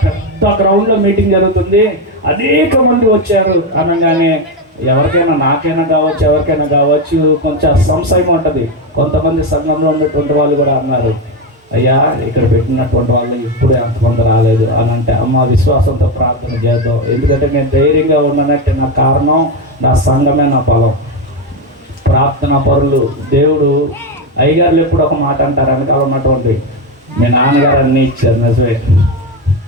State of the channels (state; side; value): normal; both; correlation 0.11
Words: పెద్ద గ్రౌండ్లో మీటింగ్ జరుగుతుంది, అనేక మంది వచ్చారు అనగానే ఎవరికైనా, నాకైనా కావచ్చు, ఎవరికైనా కావచ్చు, కొంచెం సంశయం ఉంటుంది. కొంతమంది సంఘంలో ఉన్నటువంటి వాళ్ళు కూడా అన్నారు, అయ్యా ఇక్కడ పెట్టినటువంటి వాళ్ళు ఇప్పుడు ఎంతమంది రాలేదు అని అంటే, అమ్మ విశ్వాసంతో ప్రార్థన చేద్దాం, ఎందుకంటే నేను ధైర్యంగా ఉన్నానంటే నా కారణం నా సంఘమే, నా బలం, ప్రార్థన పరులు. దేవుడు అయ్యగారులు ఎప్పుడు ఒక మాట అంటారు, వెనకాల ఉన్నటువంటి మీ నాన్నగారు అన్నీ ఇచ్చారు, నిజమే,